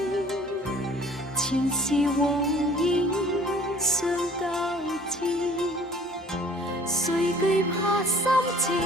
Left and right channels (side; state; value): both; normal; correlation 0.52